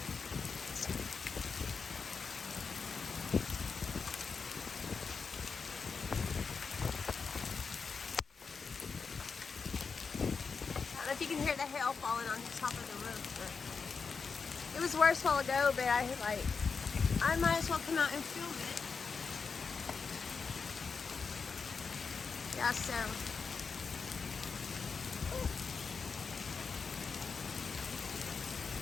I don't know if you can hear the hail falling on the top of the roof, but it was worse a while ago, but I might as well come out and film it. Yeah, so.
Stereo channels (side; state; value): right; quieter; 5.2 dB